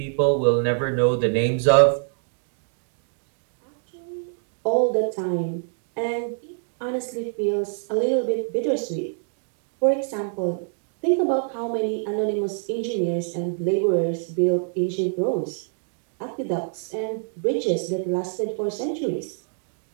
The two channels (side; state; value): left; silent; digital silence